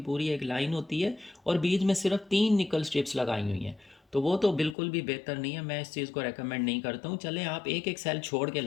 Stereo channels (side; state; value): right; drops out; at 4.8 s